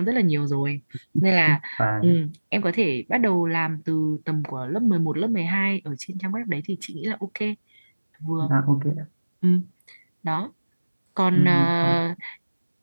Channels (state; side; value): inverted; both; correlation -1.00